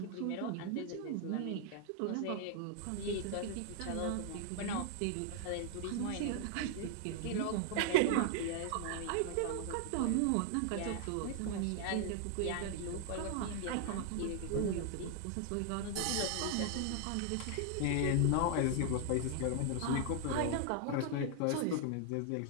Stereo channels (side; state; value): both; different; correlation 0.00